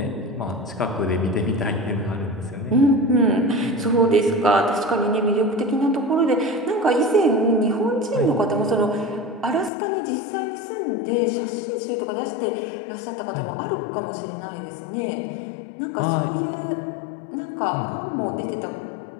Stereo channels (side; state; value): right; drops out; at 9.7 s